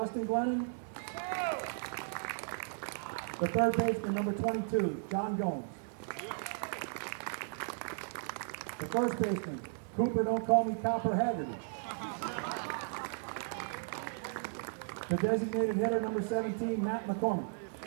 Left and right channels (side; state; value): left; silent; digital silence